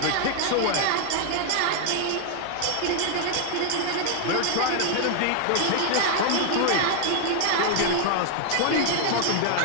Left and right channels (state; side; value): different; both; correlation 0.00